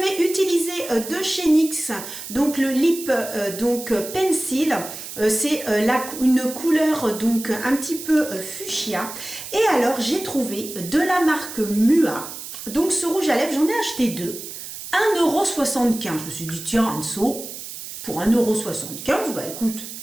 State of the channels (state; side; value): noise; right; hiss, 10 dB below the sound